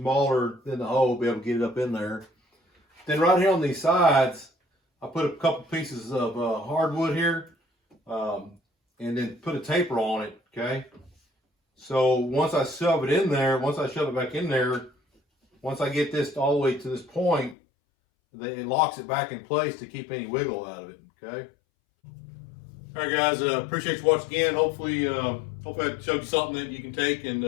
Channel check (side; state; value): right; drops out; at 17.6 s